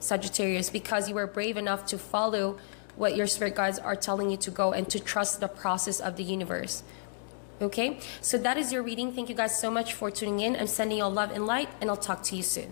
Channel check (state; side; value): silent; right; digital silence